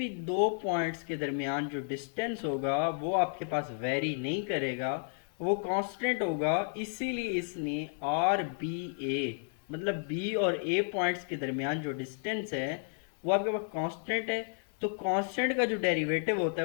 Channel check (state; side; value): silent; right; digital silence